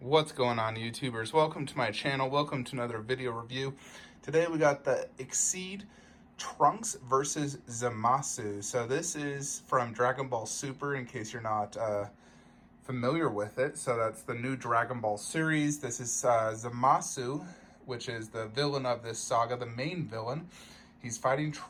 What's going on, YouTubers? Welcome to my channel. Welcome to another video review. Today we got the Xceed Trunks versus Zamasu. So this is from Dragon Ball Super, in case you're not familiar with it. So that's the new Dragon Ball series. This is Zamasu, which is the villain of this saga, the main villain. He's fighting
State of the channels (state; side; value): identical; both; correlation 1.00